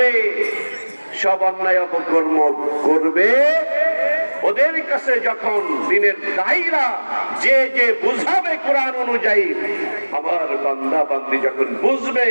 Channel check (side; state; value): both; inverted; correlation -1.00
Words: সব অন্যায় অপকর্ম করবে। ওদের কাছে যখন দিনের দায়ীরা যে যে বুঝাবে কোরআন অনুযায়ী, আমার বান্দা বান্দি যখন বুঝবে,